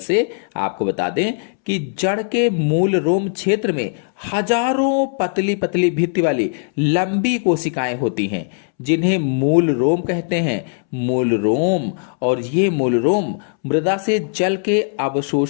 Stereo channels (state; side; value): silent; right; 66 dB below the other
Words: आपको बता दें कि जड़ के मूल रोम क्षेत्र में हजारों पतली पतली भित्ति वाली लंबी कोशिकाएं होती हैं जिन्हें मूल रोम कहते हैं। मूल रोम, और ये मूल रोम मृदा से जल के